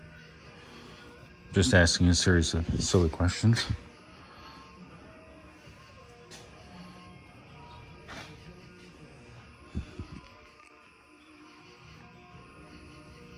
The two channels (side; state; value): both; identical; correlation 1.00